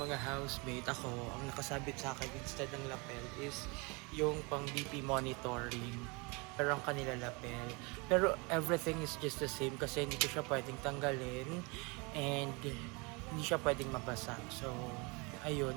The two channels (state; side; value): quieter; left; 28.8 dB